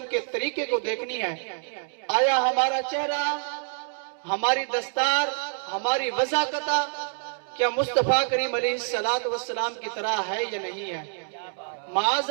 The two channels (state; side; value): silent; left; 60 dB below the other